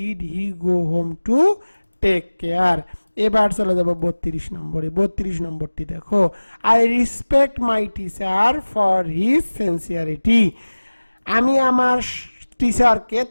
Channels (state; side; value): inverted; both; correlation -1.00